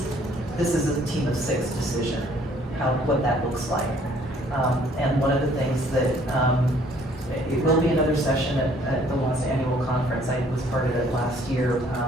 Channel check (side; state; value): both; normal; correlation 0.60